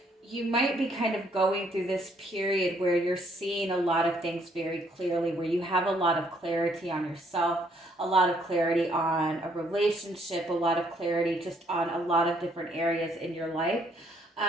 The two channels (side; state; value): both; normal; correlation 0.67